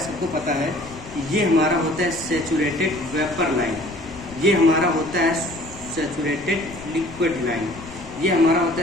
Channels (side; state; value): left; noise; rumble, 19 dB below the sound